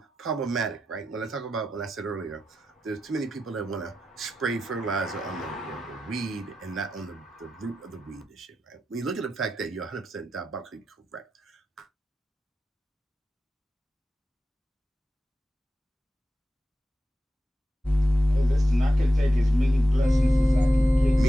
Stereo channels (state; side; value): normal; both; correlation 0.91